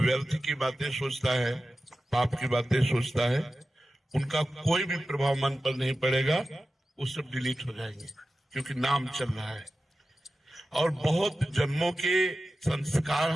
की बातें सोचता है, पाप की बातें सोचता है, उनका कोई भी प्रभाव मन पर नहीं पड़ेगा। वो सब डिलीट हो जाएंगे क्योंकि नाम चल रहा है। और बहुत जन्मों के संस्कार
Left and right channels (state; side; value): normal; both; correlation 0.93